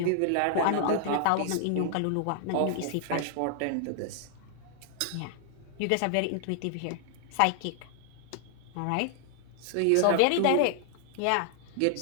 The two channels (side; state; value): both; different; correlation 0.00